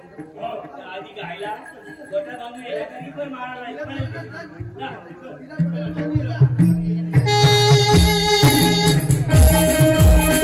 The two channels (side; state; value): both; identical; correlation 1.00